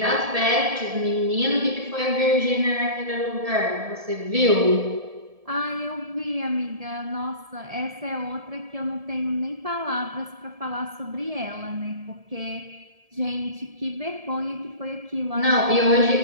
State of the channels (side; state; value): left; late; 1.7 ms